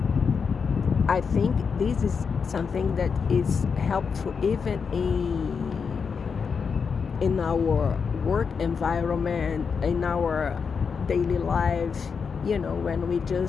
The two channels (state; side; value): quieter; right; 5.8 dB